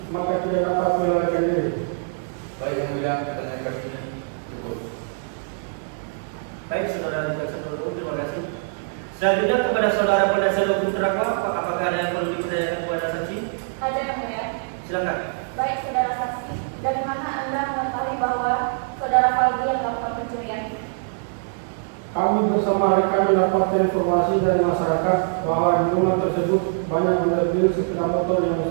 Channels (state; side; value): silent; left; 63 dB below the other